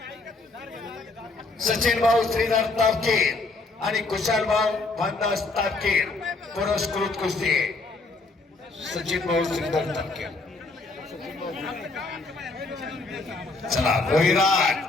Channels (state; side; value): quieter; right; 3.5 dB